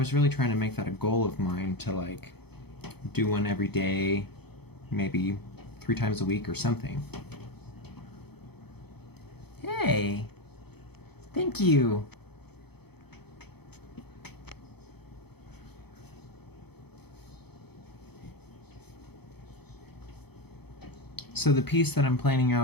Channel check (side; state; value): right; late; 0.97 ms